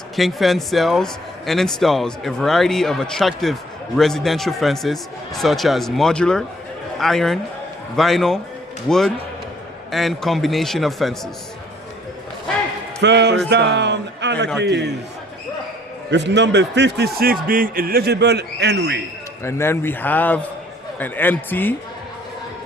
King Fence sells and installs a variety of attractive residential fences such as modular, iron, vinyl, wood, and combination of fences. 1st down, Anarchies. With number 56 being eligible, Henry. And then we have an empty.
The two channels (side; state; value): both; normal; correlation 0.59